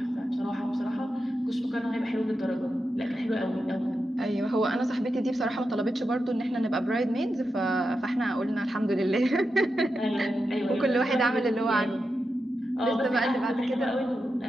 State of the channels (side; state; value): both; normal; correlation 0.89